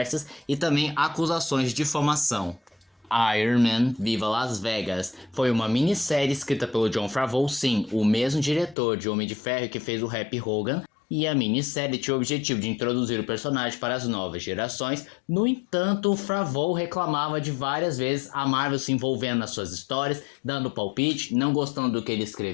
e também acusações de difamação. Iron Man Viva Las Vegas. Foi uma minissérie escrita pelo Jon Favreau, sim, o mesmo diretor de Homem de Ferro que fez o Happy Hogan. E a minissérie tinha o objetivo de introduzir o personagem para as novas gerações. No entanto, o Favreau reclamava de várias vezes a Marvel se envolvendo nas suas histórias, dando palpite, não gostando do que ele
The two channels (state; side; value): drops out; right; at 8.8 s